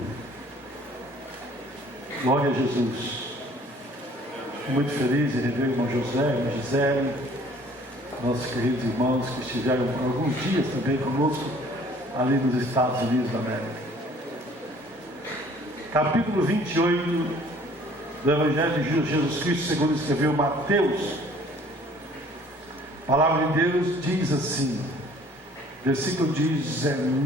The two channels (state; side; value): normal; both; correlation 0.55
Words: Glória a Jesus. Muito feliz em rever o irmão José, a irmã Gisele, nossos queridos irmãos que estiveram alguns dias também conosco ali nos Estados Unidos da América. Capítulo 28 do Evangelho de Jesus Cristo, segundo escreveu Mateus. A palavra de Deus diz assim, versículo